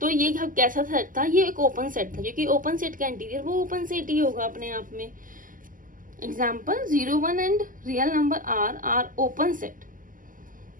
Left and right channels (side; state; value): left; late; 0.39 ms